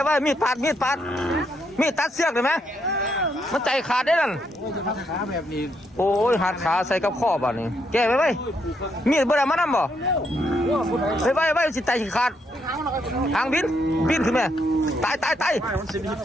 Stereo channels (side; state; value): both; normal; correlation 0.76